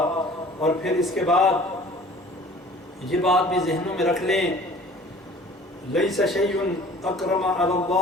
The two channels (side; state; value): both; normal; correlation 0.48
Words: اور پھر اس کے بعد یہ بات بھی ذہنوں میں رکھ لیں، لیس شیء اکرم علی